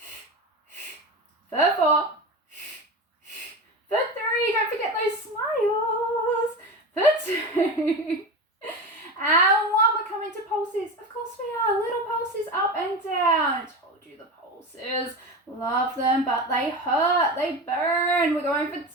For 4. For 3. Don't forget those smiles. For 2. And 1. We're coming to pulses. Of course we are. Little pulses up and down. I told you the pulses. Love them, but they hurt. They burn. We're going for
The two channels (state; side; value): normal; both; correlation 0.25